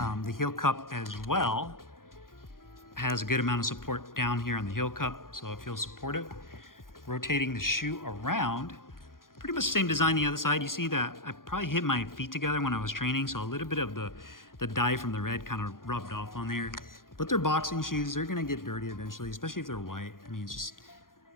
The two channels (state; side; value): late; right; 0.91 ms